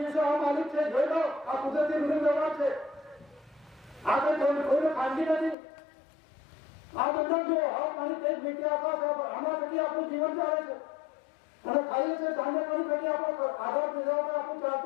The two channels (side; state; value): right; drops out; at 5.6 s